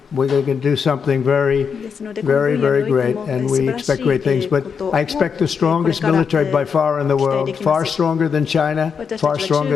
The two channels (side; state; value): right; quieter; 6.3 dB